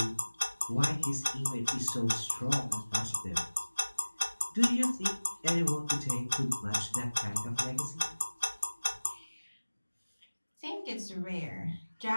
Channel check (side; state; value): both; inverted; correlation -1.00